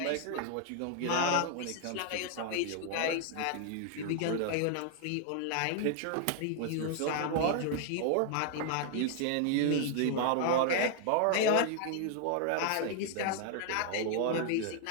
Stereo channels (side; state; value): both; different; correlation 0.00